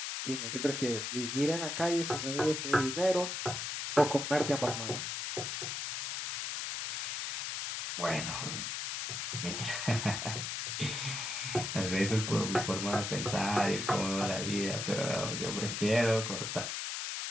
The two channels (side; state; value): left; noise; hiss, 3 dB below the sound